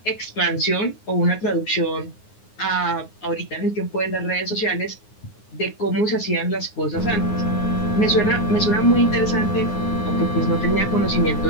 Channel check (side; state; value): right; late; 9.6 ms